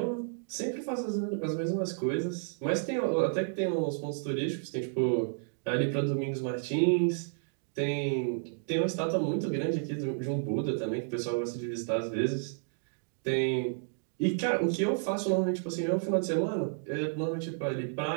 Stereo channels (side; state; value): left; silent; digital silence